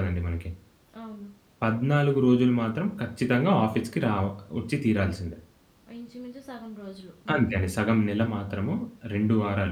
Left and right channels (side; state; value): both; identical; correlation 1.00